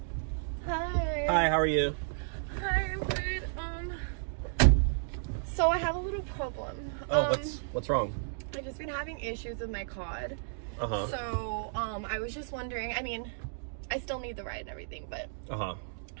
Hi. Hi, how are you? Hi, I'm good. So I have a little problem. Oh, what's wrong? I've just been having issues with my card. Uh-huh. So, I was just wondering, I mean, I still need the ride and everything, but uh-huh.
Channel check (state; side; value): silent; left; digital silence